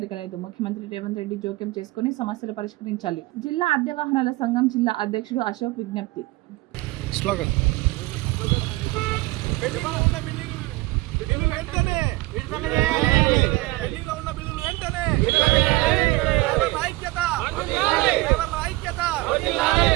ముఖ్యమంత్రి రేవంత్ రెడ్డి జోక్యం చేసుకుని సమస్యలు పరిష్కరించాలి. జిల్లా అద్దె వాహనాల సంఘం జిల్లా అధ్యక్షుడు అశోక్ విజ్ఞప్తి. స్లోగన్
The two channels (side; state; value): left; quieter; 20.9 dB